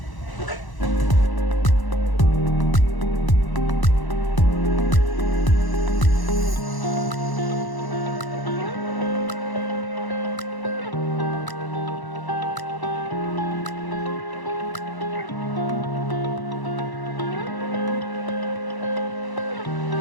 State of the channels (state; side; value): late; right; 1.0 ms